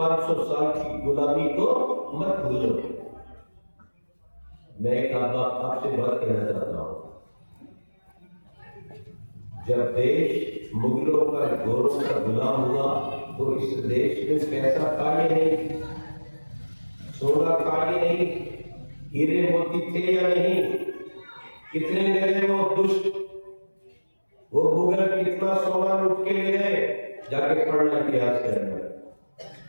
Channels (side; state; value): both; inverted; correlation -1.00